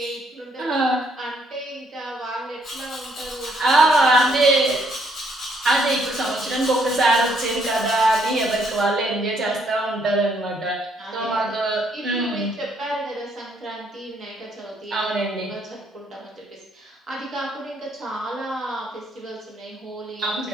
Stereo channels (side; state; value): both; normal; correlation 0.69